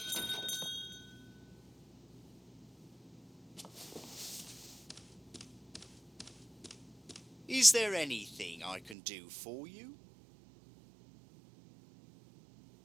Is there anything I can do for you?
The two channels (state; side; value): drops out; left; at 9.0 s